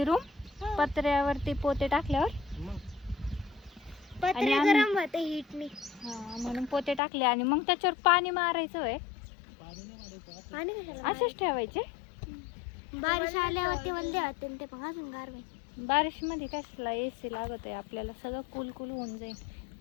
रूम पत्र्यावरती पोते टाकल्यावर. पत्रे गरम होते हीटनी. हा, म्हणून पोते टाकले आणि मग त्याच्यावर पाणी मारायचं वय. पाणी कशाला? असेच ठेवायचे. बारिश आल्यावरती वल्ले होते ते पण अजून गार होईल. बारिश मध्ये कसला एसी लागत आहे आपल्याला, सगळं कुल कुल होऊन जाईल.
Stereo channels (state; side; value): drops out; right; at 7.0 s